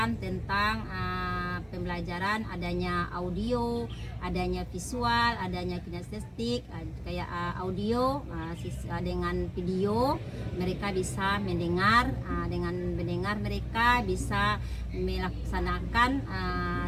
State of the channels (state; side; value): identical; both; correlation 1.00